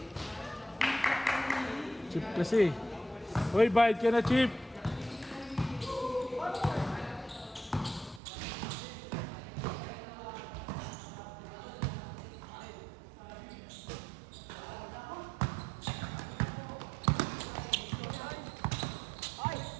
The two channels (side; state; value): left; drops out; at 8.2 s